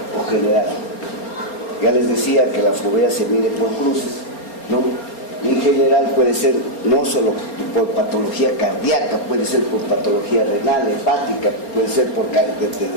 o general. Ya les decía que la fovea se mide por cruces, ¿no? En general puede ser no solo por patología cardíaca, puede ser por patología renal, hepática, puede ser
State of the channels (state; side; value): late; right; 4.3 ms